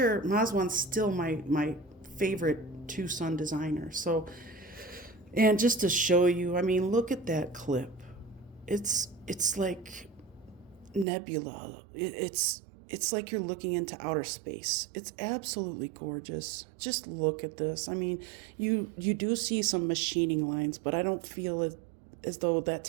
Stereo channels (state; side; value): drops out; left; at 11.1 s